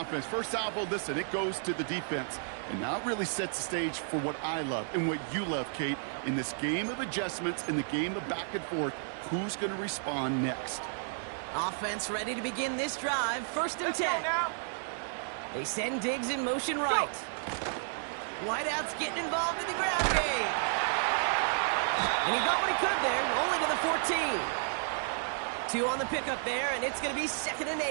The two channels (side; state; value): left; silent; digital silence